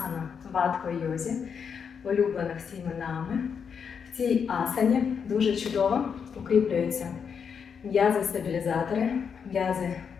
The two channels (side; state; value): right; quieter; 6.7 dB